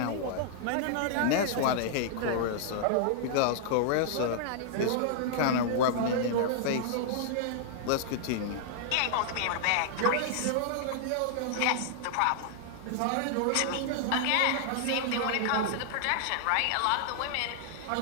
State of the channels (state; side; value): different; both; correlation -0.01